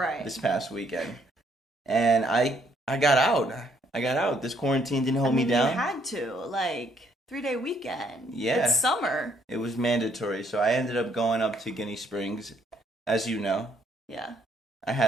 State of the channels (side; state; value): both; normal; correlation 0.68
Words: this past weekend. And I got out. This quarantine didn't hold me down. You had to, 3-day weekend. Yeah. It's summer. It was mandatory. So I ended up going up to Guinea Springs, as you know. Yeah. I